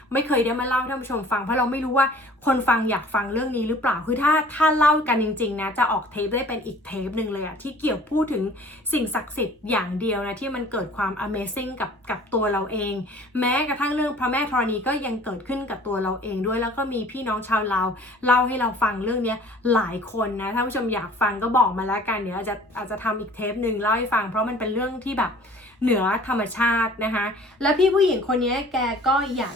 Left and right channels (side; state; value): both; normal; correlation 0.49